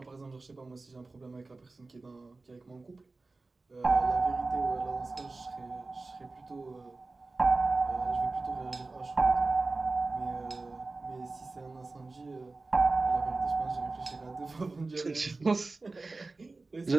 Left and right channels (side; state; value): left; quieter; 3.5 dB